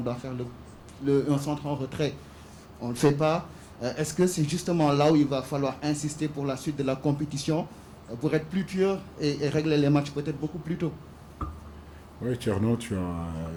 doit faire un centre en retrait. On ne le fait pas. Est-ce que c'est justement là où il va falloir insister pour la suite de la compétition, pour être plus dur et régler les matchs peut-être beaucoup plus tôt? Oui, Thierno, tu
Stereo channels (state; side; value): identical; both; correlation 1.00